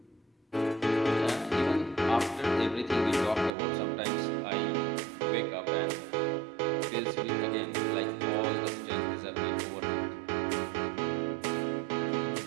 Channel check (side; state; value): left; drops out; at 3.5 s